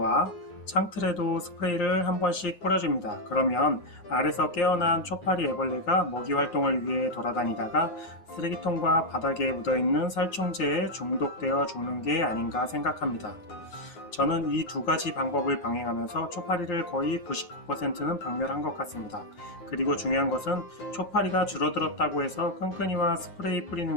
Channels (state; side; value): late; right; 9.5 ms